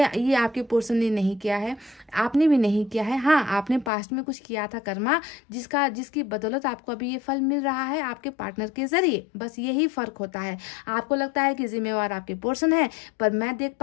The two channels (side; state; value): right; drops out; at 3.9 s